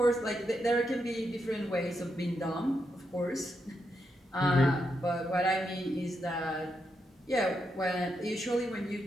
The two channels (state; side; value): normal; both; correlation 0.82